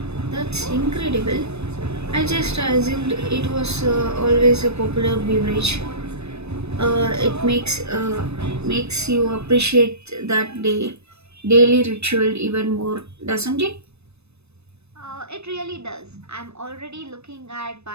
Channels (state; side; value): late; left; 0.80 ms